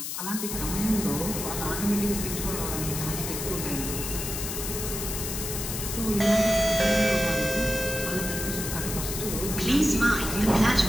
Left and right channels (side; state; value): left; noise; hiss, 5 dB below the sound